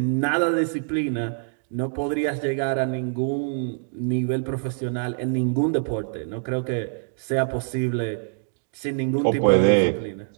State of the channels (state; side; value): silent; left; digital silence